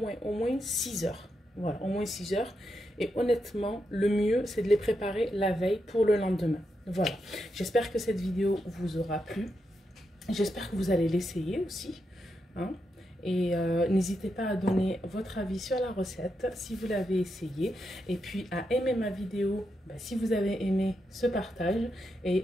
6 heures. Voilà, au moins 6 heures. Et honnêtement, le mieux, c'est de les préparer la veille pour le lendemain. Voilà. J'espère que cette vidéo vous aura plu. J'espère que vous allez l'essayer aussi. Hein. Et n'hésitez pas à donner votre avis sur la recette si vous l'avez essayé. Et puis à aimer ma vidéo si vous avez aimé ce partage.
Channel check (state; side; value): normal; both; correlation 0.84